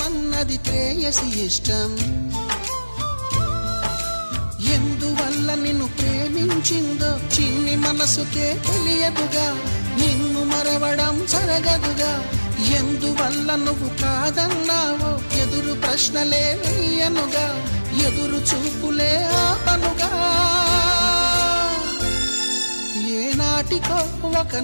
అన్నది ప్రేయసి ఇష్టం. ఎందువల్ల నిన్ను ప్రేమించిందో చిన్ని మనసుకే తెలియదుగా, నిన్ను మరవడం జరగదుగా. ఎందువల్ల నువ్వు కాదన్నావో ఎదురు ప్రశ్నలే వేయనుగా, ఎదురు చూపులే ఆపనుగా. ఏనాటికో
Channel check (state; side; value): inverted; both; correlation -1.00